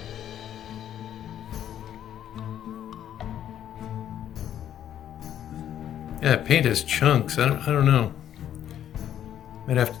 Yeah, paint has chunks. I don't know. Might have to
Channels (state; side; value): quieter; right; 10.6 dB